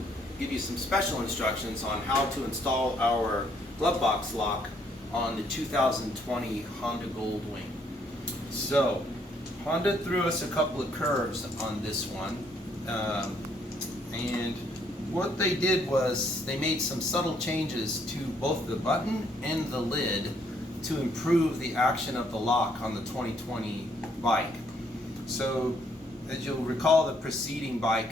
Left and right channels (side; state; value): both; normal; correlation 0.68